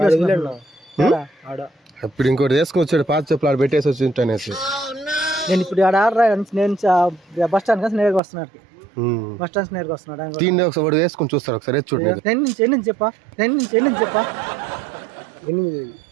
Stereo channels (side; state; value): left; drops out; at 8.2 s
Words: ఆడ ఇప్పుడు ఇంకోటి వేసుకొచ్చాడు పాత చెప్పులు ఆడ పెట్టేసి వచ్చి ఉంటానేసి. నేను ఇప్పుడు ఆడ నేను బస్ స్టాండ్ kasi నేరుగా వస్తున్నాడు. బస్ స్టాండ్ నేరుగా వస్తున్నాడు. దీన్ని ఒకసారి వేసుకొని చూస్తారు ఒకసారి చూడండి. ఎన్ని చెప్పా